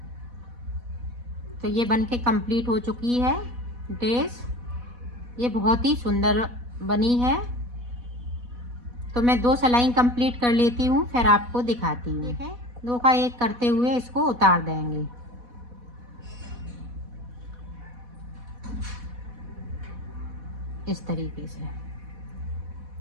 तो ये बनके कंप्लीट हो चुकी है ड्रेस। ये बहुत ही सुंदर बनी है। तो मैं 2 सिलाई कंप्लीट कर लेती हूँ, फिर आपको दिखाती हूँ। ठीक है 2 का 1 करते हुए इसको उतार देंगे। इस तरीके से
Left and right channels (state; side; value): late; left; 4.1 ms